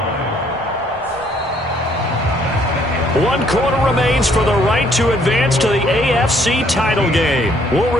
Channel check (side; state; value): both; normal; correlation 0.65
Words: 1 quarter remains for the right to advance to the AFC title game. We'll